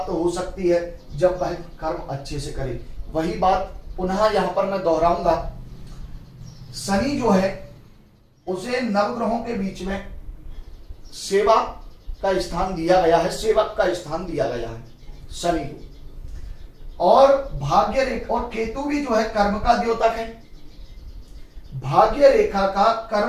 हो सकती है जब वह कर्म अच्छे से करे। वही बात पुनः यहां पर मैं दोहराऊंगा। शनि जो है उसे नवग्रहों के बीच में सेवा का स्थान दिया गया है, सेवक का स्थान दिया गया है शनि को। और भाग्य रेखा और केतु भी जो है कर्म का द्योतक है। भाग्य रेखा का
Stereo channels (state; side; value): identical; both; correlation 1.00